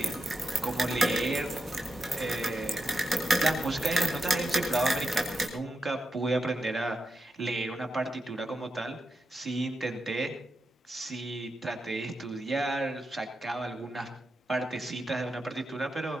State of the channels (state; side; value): normal; both; correlation 0.88